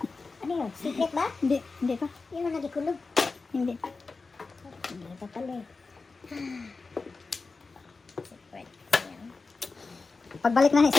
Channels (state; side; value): quieter; right; 4.1 dB